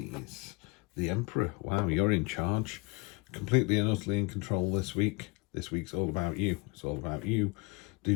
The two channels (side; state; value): right; quieter; 27.3 dB